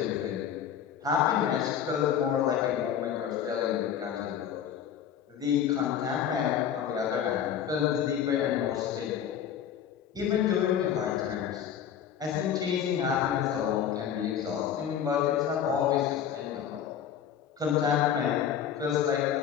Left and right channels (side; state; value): right; quieter; 9.0 dB